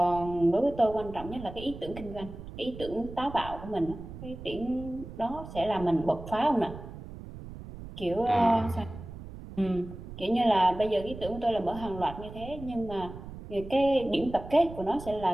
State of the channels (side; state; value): right; noise; rumble, 13 dB below the sound